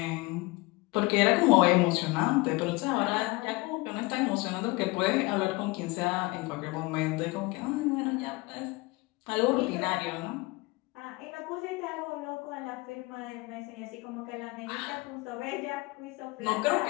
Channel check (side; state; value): right; quieter; 23.6 dB